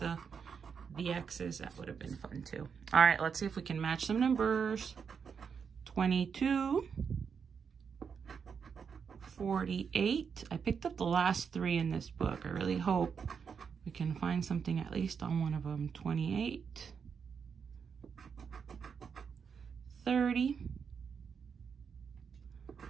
the X's. That would have been fun too. All right, let's see if we can match some numbers. 22, 48. I picked up the last 3 in this book. I really hope we can find something at least on one of them. 28, 30,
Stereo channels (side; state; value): left; quieter; 6.4 dB